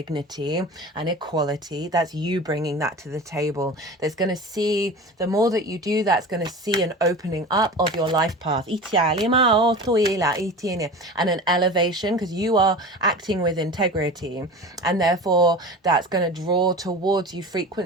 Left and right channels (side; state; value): both; normal; correlation 0.34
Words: and equality. That's you bringing that to the table. That's going to see, the more that you do, that's going to see an opening up of your life path and an elevation, because you are acting with integrity, and therefore that's going to draw towards you